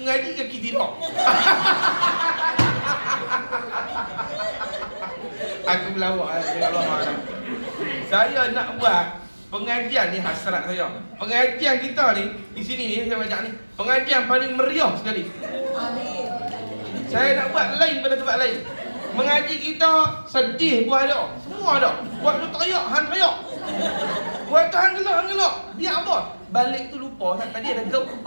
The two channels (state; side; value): inverted; both; correlation -1.00